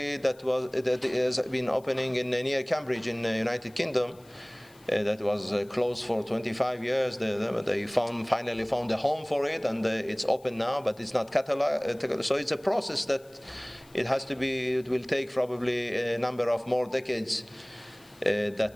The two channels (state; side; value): noise; left; hiss, 28 dB below the sound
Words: that has been opening near Cambridge in the United Kingdom. That was closed for 25 years. They finally found a home for it, and it's open now, but it's not cataloged. So it's a process that it will take probably a number of more decades